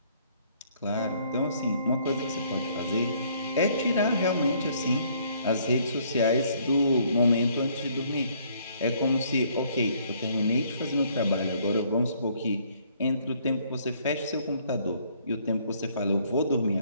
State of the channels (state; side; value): inverted; both; correlation -0.64